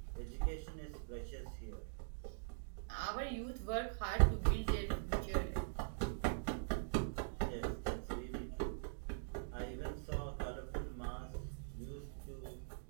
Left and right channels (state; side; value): silent; left; digital silence